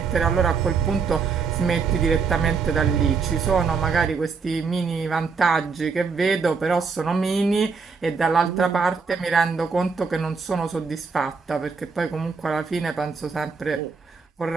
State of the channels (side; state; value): left; quieter; 5.2 dB